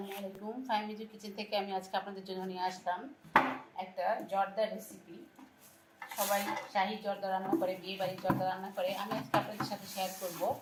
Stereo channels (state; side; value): identical; both; correlation 1.00